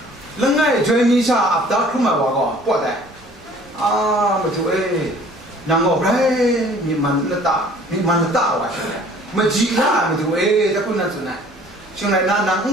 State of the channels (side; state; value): both; normal; correlation 0.52